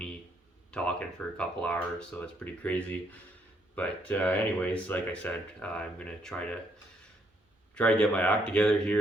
talking for a couple hours, so it's pretty crazy. But anyways, like I said, I'm gonna try to get my act together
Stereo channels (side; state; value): both; normal; correlation 0.72